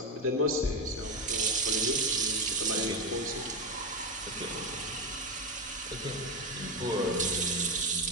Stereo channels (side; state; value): both; normal; correlation 0.12